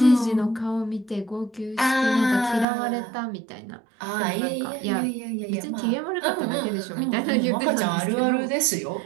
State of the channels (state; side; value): drops out; left; at 2.7 s